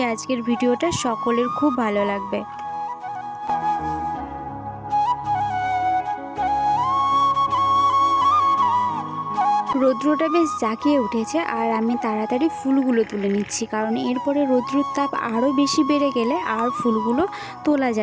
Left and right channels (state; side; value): identical; both; correlation 1.00